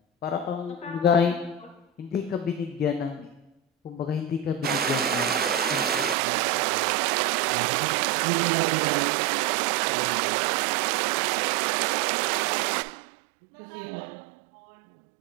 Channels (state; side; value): drops out; left; at 6.2 s